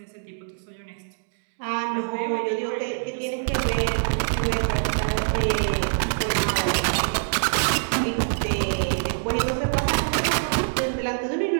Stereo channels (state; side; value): silent; left; digital silence